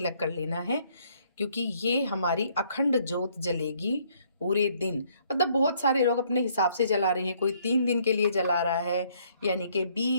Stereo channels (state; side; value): inverted; both; correlation -0.66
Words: कर लेना है, क्योंकि ये हमारी अखंड ज्योत जलेगी पूरे दिन। मतलब बहुत सारे लोग अपने हिसाब से जला रहे हैं, कोई 3 दिन के लिए जला रहा है, यानी कि